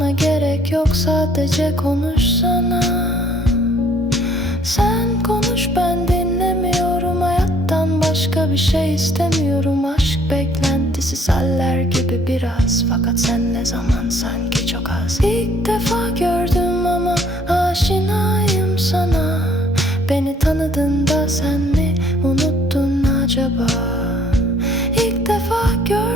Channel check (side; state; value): both; normal; correlation 0.60